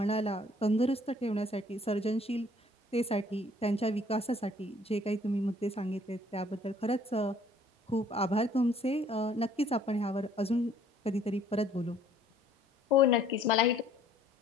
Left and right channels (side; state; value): both; normal; correlation 0.59